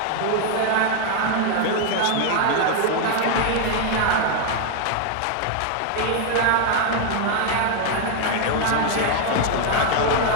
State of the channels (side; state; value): both; different; correlation 0.01